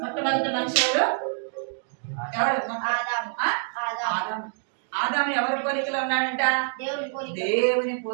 మొట్టమొదటి మనిషి ఎవరు, ఆదాము ఎవరి పోలికలో ఉన్నాడంట, దేవుని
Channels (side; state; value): left; silent; digital silence